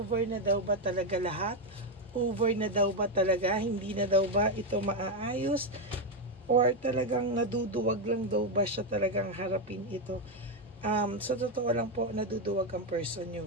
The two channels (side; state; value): both; normal; correlation 0.06